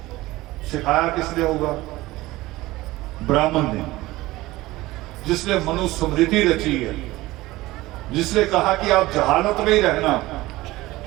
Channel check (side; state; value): left; quieter; 18.6 dB